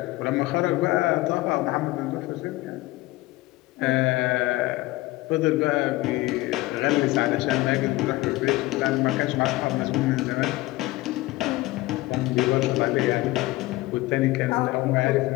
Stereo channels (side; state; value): right; quieter; 19.5 dB